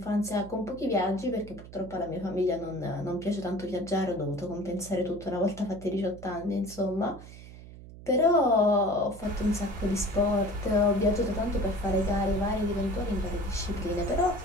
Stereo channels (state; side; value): noise; right; hum, 16 dB below the sound